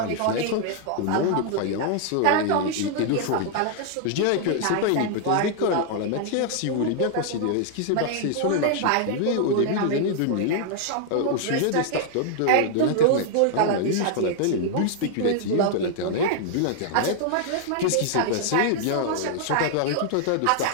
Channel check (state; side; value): different; both; correlation 0.00